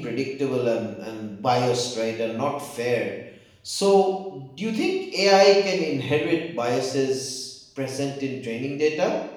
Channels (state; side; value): identical; both; correlation 1.00